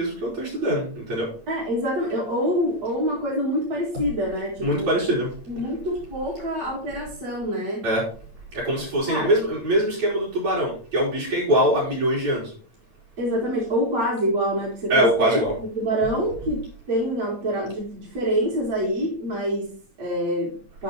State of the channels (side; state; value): left; late; 8.8 ms